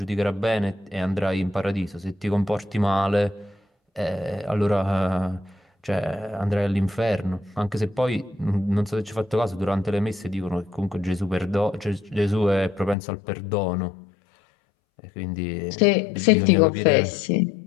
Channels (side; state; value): right; drops out; at 13.0 s